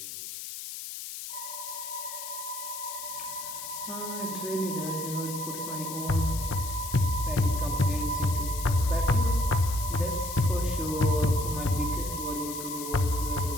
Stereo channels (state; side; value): noise; left; hiss, 8 dB below the sound